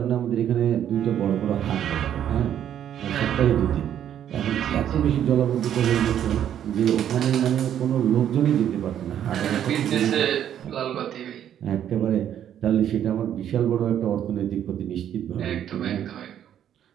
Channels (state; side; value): quieter; left; 10.1 dB